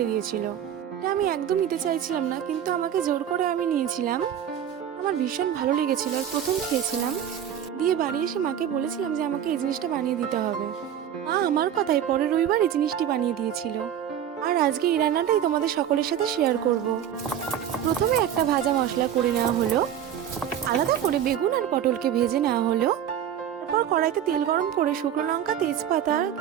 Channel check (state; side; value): quieter; left; 9.8 dB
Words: দিয়েছিল। এটা আমি একদম নিতে চাইছিলাম না, কিন্তু আমাকে জোর করে আমি নিয়েছিলাম। আমার ভীষণ ভালো লেগেছিল আর প্রথম খেয়েছিলাম। দিয়ে বাড়ি এসে মাকে বলেছিলাম যে আমাকে এই জিনিসটা বানিয়ে দিতে হবে। মা আমার কথায় পরের রবিবার এই জিনিসটি বানিয়ে দিয়েছিল। আর আজকে এই রান্নাটাই তোমাদের সকলের সাথে শেয়ার করব। প্রথমে একটা ভাজা মশলা করে নেওয়া হলো। আলাদা করে বেগুন আর পটলকে ভেজে নেওয়া হলো। তারপর কড়াইতে তেল গরম করে শুকনো লঙ্কা, তেজপাতা,